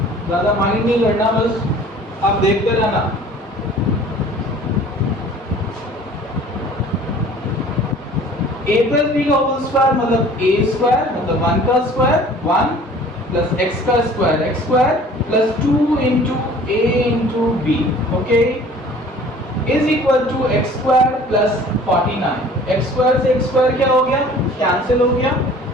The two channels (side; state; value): both; normal; correlation 0.49